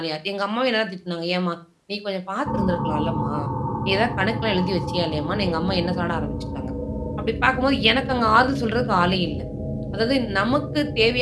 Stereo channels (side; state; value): both; identical; correlation 1.00